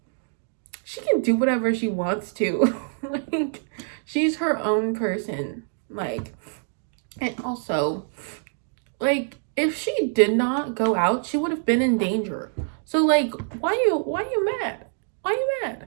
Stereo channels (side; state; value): left; silent; digital silence